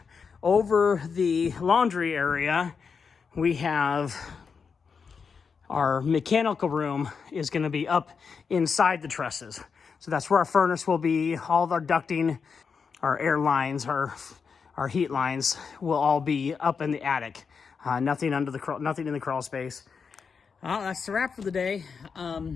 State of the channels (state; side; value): quieter; right; 5.7 dB